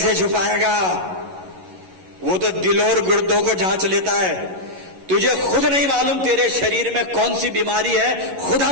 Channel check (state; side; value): late; left; 11 ms